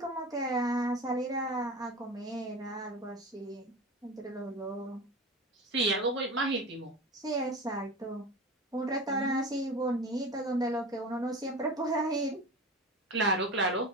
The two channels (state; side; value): normal; both; correlation 0.31